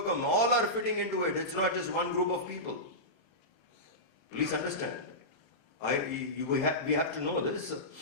All are fitting into it. It's not just one group of people. Please understand. We have to know this.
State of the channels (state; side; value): late; right; 35 ms